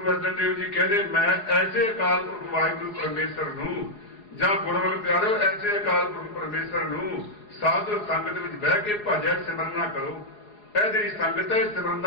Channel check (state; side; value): late; right; 4.8 ms